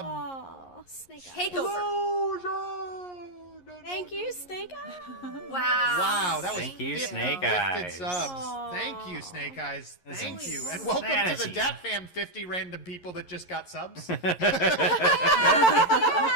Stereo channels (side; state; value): right; late; 11 ms